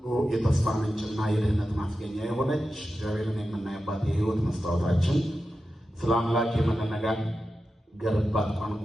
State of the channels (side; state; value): both; normal; correlation 0.91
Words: የተስፋ ምንጭና የድህነት ማስገኛ የሆነች እግዚአብሔርን የምናይባት የሕይወት መስታወታችን ስለ አምላክ የምንነጋገርባት